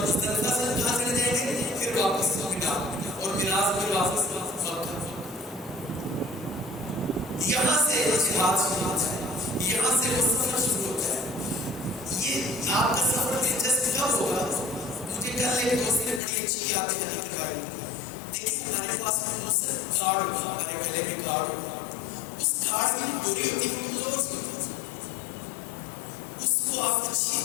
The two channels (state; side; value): drops out; right; at 16.2 s